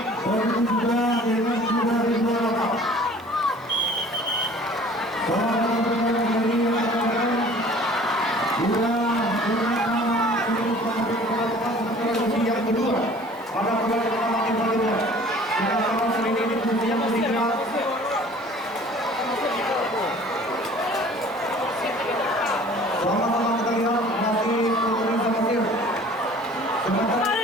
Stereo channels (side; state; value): right; noise; hiss, 28 dB below the sound